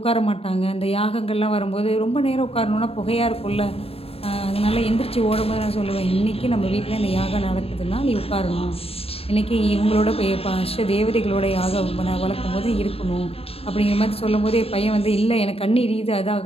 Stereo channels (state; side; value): late; right; 0.28 ms